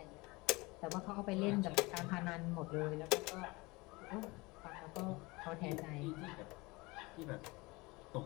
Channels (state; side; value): quieter; right; 24.0 dB